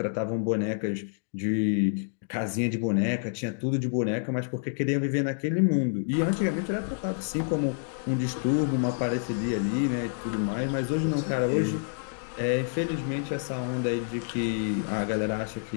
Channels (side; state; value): right; silent; digital silence